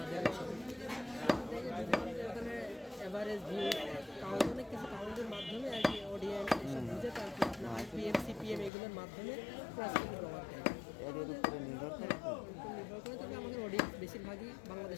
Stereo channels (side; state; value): right; drops out; at 8.7 s